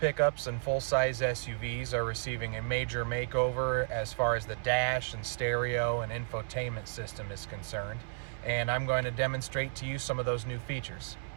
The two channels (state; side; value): silent; left; 56 dB below the other